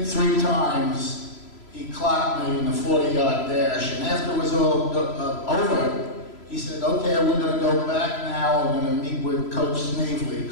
3 times he clocked me in the 40-yard dash. And after it was all over, he said, okay, we're going to go back now. We're going to meet with Coach Snavely.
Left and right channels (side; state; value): right; late; 3.0 ms